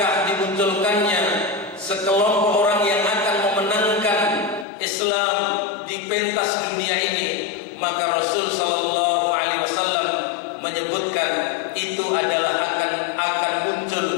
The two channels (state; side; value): drops out; right; at 4.7 s